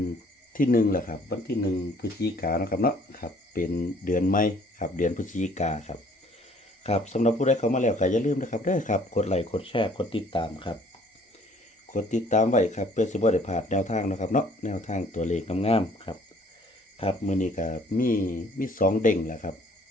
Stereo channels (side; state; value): both; normal; correlation 0.58